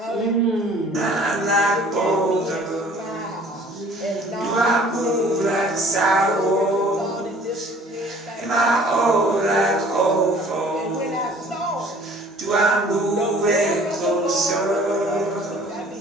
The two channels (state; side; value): normal; both; correlation 0.52